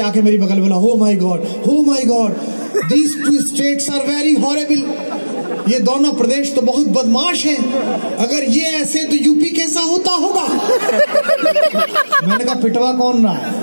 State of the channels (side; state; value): both; inverted; correlation -1.00